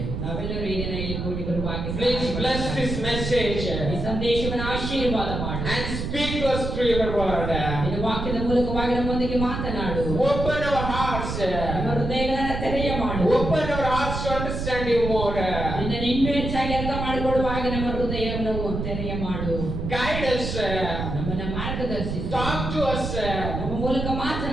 ನಾವೆಲ್ಲರೂ ಈ ದಿನ ಇಲ್ಲಿ ಕೂಡಿ ಬರುವಾಗ Please bless this message ಈ ಸಂದೇಶವನ್ನು ಆಶೀರ್ವಾದ ಮಾಡು. and speak to us through your word. ನಿನ್ನ ವಾಕ್ಯದ ಮೂಲಕವಾಗಿ ನಮ್ಮೊಂದಿಗೆ ಮಾತನಾಡು. Open our hearts. ನಮ್ಮ ಹೃದಯಗಳನ್ನು ತೆರೆಯ ಮಾಡು. Open our hearts to understand you more. ನಿನ್ನನ್ನು ಇನ್ನೂ ಹೆಚ್ಚಾಗಿ ಅರ್ಥ ಮಾಡಿಕೊಳ್ಳುವಾಗ ನಮ್ಮ ಹೃದಯವನ್ನು ತೆರೆಯ ಮಾಡು. Guide us. ನಮ್ಮನ್ನು ಮಾರ್ಗದರ್ಶಿಸು. Talk to us. ನಮ್ಮ ಮೂಲಕ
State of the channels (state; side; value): noise; right; rumble, 4 dB below the sound